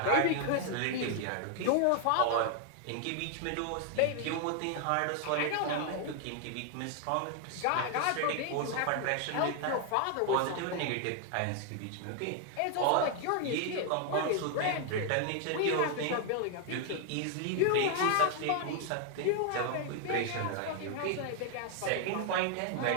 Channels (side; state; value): both; different; correlation 0.00